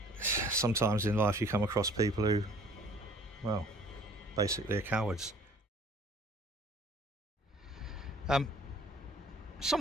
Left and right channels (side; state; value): both; normal; correlation 0.53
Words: sometimes in life you come across people who, well, basically are cowards.